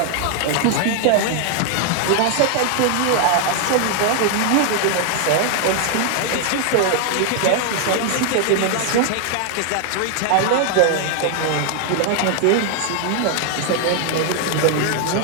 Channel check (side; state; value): both; different; correlation 0.00